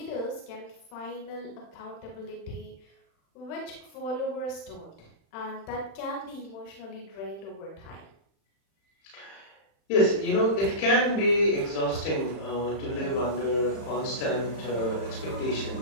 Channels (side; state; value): right; late; 35 ms